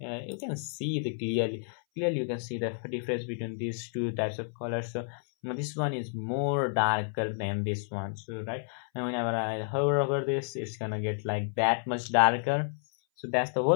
can see the clearly you can see the difference between these two types of colors. So this one is more darker than this one, so right, and whenever I hover over this, it's gonna get like that much darker. So that's the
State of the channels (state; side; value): silent; right; 57 dB below the other